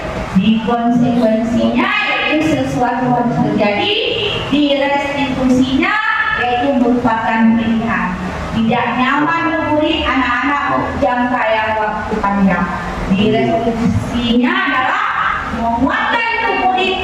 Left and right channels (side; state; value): both; identical; correlation 1.00